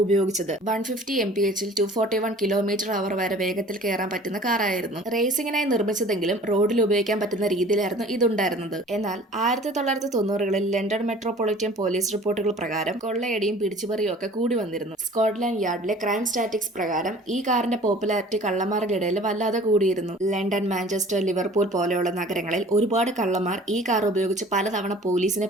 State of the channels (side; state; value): both; normal; correlation 0.47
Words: ഉപയോഗിച്ചത്. 150 mph 241 km/h വരെ വേഗത്തിൽ കയറാൻ പറ്റുന്ന കാറായിരുന്നു. റേസിംഗിനായി നിർമ്മിച്ചതെങ്കിലും റോഡിൽ ഉപയോഗിക്കാൻ പറ്റുന്ന രീതിയിലായിരുന്നു ഇതുണ്ടായിരുന്നത്. എന്നാൽ 1990കളിൽ ലണ്ടൻ മെട്രോപൊളിറ്റൻ പോലീസ് റിപ്പോർട്ടുകൾ പ്രകാരം കൊള്ളയടിയും പിടിച്ചുപറിയും ഒക്കെ കൂടി വന്നിരുന്നു. സ്കോട്ട്ലാൻഡ് യാർഡിലെ ക്രൈം സ്റ്റാറ്റിക്സ് പ്രകാരം ഈ കാറിന്റെ പോപ്പുലാരിറ്റി കള്ളന്മാരുടെ ഇടയിൽ വല്ലാതെ കൂടിയിരുന്നു. ലണ്ടൻ, മാഞ്ചസ്റ്റർ, ലിവർപൂൾ പോലെയുള്ള നഗരങ്ങളിൽ ഒരുപാട് കള്ളന്മാർ ഈ കാർ ഉപയോഗിച്ച് പലതവണ പോലീസിനെ